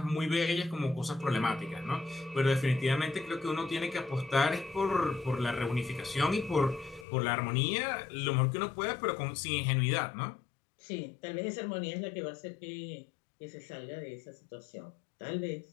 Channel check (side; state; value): right; drops out; at 7.1 s